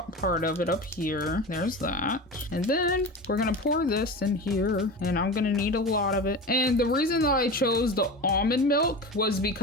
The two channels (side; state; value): both; normal; correlation 0.28